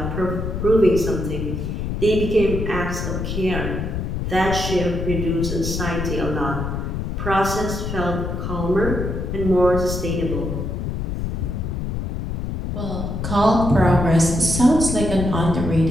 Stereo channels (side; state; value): left; noise; rumble, 3 dB below the sound